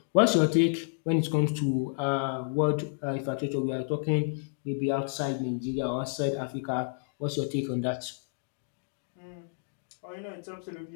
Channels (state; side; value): silent; right; digital silence